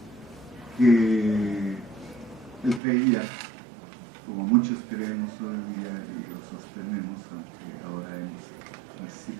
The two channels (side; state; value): left; drops out; at 2.8 s